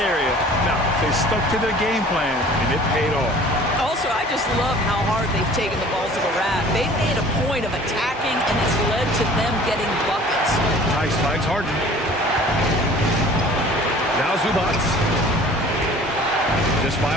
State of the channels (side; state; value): both; normal; correlation 0.48